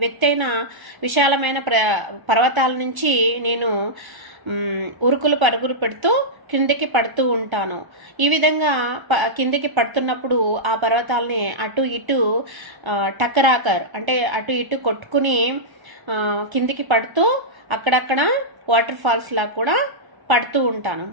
విశాలమైన పర్వతాల నుంచి నేను ఉరుకులు పరుగులు పెడుతూ కిందికి పడుతూ ఉంటాను. ఈ విధంగా కిందికి పడుతున్నప్పుడు ఆ పర్వతాలని అటు ఇటు టకరాకర్ అంటే అటు ఇటు కొట్టుకుని కిందికి పడుతూ అక్కడక్కడ వాటర్ ఫాల్స్ లా కూడా పడుతూ ఉంటాను.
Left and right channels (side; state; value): left; late; 1.3 ms